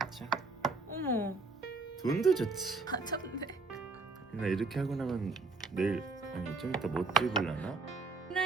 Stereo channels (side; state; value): left; quieter; 3.8 dB